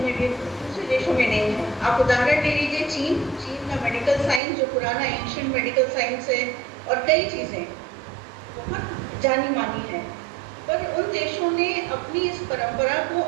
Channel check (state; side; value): drops out; left; at 4.4 s